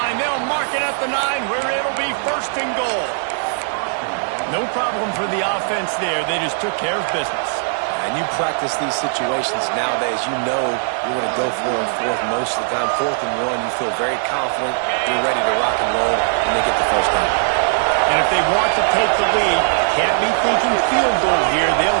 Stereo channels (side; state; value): left; silent; digital silence